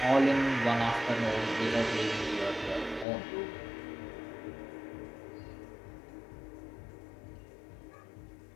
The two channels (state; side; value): drops out; right; at 3.1 s